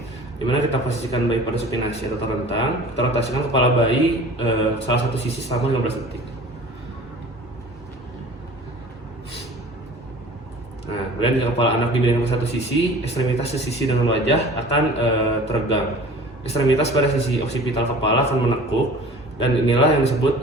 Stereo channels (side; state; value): both; normal; correlation 0.43